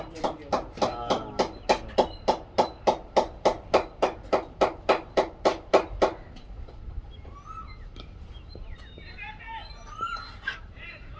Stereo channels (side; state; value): both; identical; correlation 1.00